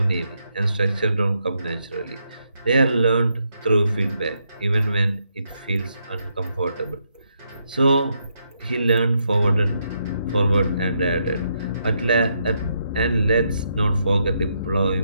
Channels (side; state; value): both; inverted; correlation -0.79